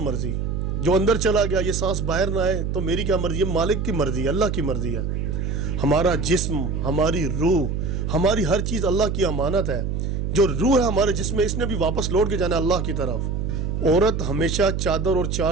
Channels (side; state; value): right; noise; hum, 1 dB below the sound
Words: جو اندر چلا گیا یہ سانس باہر نہ آئے تو میری کیا مرضی؟ یہ مالک کی مرضی ہے، اللہ کی مرضی ہے. ہمارا جسم، ہماری روح، ہماری ہر چیز اللہ کی امانت ہے. جو روح ہے ہمارے جسم میں، اس نے بھی واپس لوٹ کے جانا ہے اللہ کی طرف. عورت ہمیشہ چادر اور